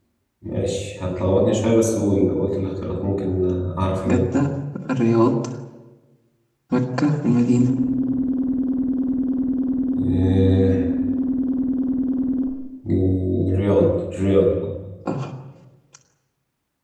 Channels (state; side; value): identical; both; correlation 1.00